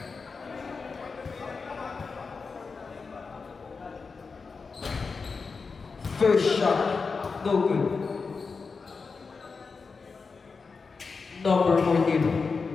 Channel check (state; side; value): quieter; right; 4.7 dB